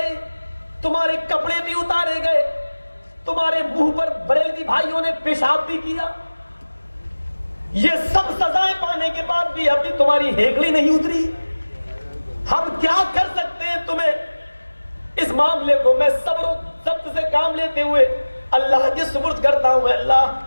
تمہارے کپڑے بھی اتارے گئے, تمہارے منہ پر بریلوی بھائیوں نے پیشاب بھی کیا. یہ سب سزائیں پانے کے بعد بھی ابھی تمہاری ہیکڑی نہیں اتری. ہم کیا کر سکتے ہیں تمہیں اس معاملے کو میں صبر و ضبط سے کام لیتے ہوئے اللہ کے سپرد کرتا ہوں. اللہ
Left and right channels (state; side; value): inverted; both; correlation -1.00